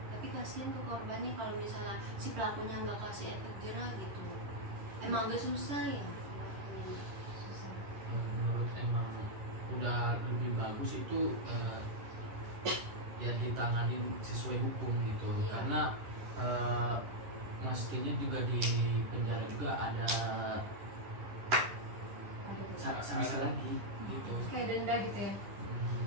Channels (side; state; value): left; late; 10 ms